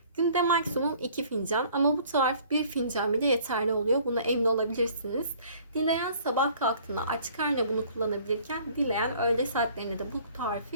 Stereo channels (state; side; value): inverted; both; correlation -0.54